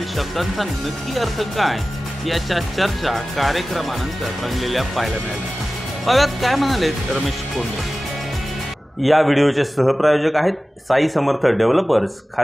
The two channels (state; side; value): normal; both; correlation 0.96